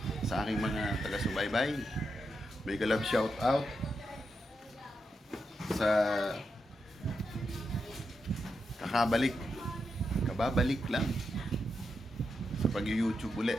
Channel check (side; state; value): both; normal; correlation 0.85